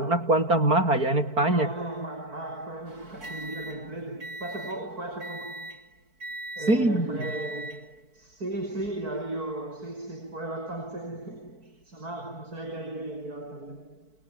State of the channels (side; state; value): left; late; 4.5 ms